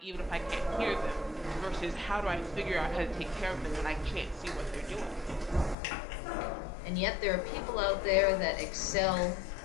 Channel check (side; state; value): right; drops out; at 5.8 s